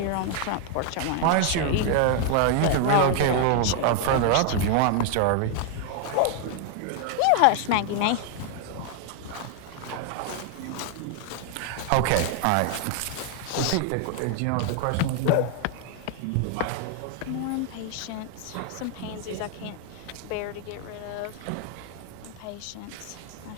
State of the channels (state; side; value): different; both; correlation 0.00